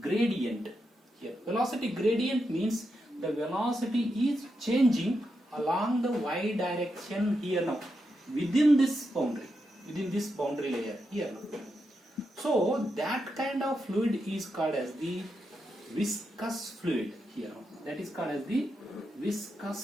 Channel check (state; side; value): normal; both; correlation 0.85